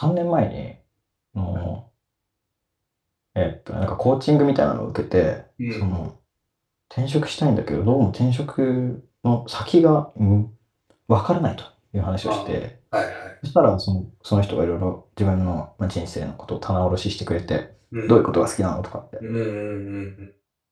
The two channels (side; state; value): both; identical; correlation 1.00